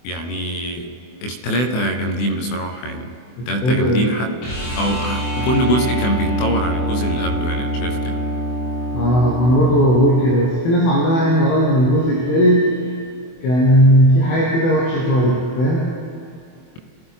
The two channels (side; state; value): right; late; 24 ms